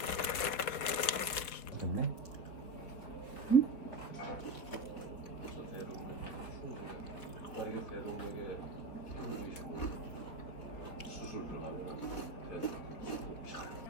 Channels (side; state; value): right; late; 4.0 ms